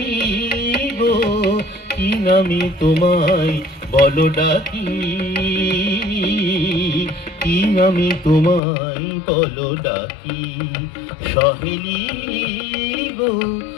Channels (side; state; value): right; drops out; at 8.6 s